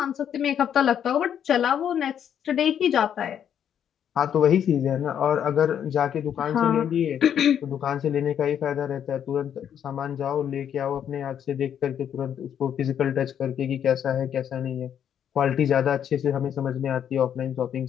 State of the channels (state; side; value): quieter; right; 9.1 dB